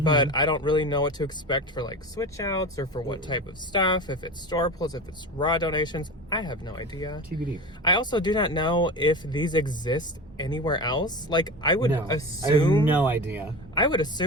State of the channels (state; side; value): normal; both; correlation 0.29